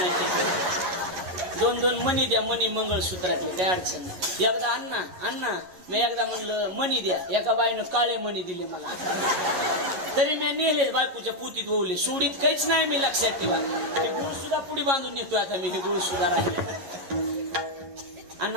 2-2 मणी द्या, मणी मंगळसूत्रातले, काही अडचण नाही. एकदा अण्णा मी एकदा म्हणलं मणी द्या, एका बाईनं काळे मणी दिले मला, तरी मी नेले बायकोच्या पुतीत ओवले, सोडीत काहीच नाही. मी लक्षात ठेवा, गुळ सुद्धा पुढे बांधून नेतोय आता मी, हे गुळ सुद्धा राहिले.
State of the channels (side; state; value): left; late; 11 ms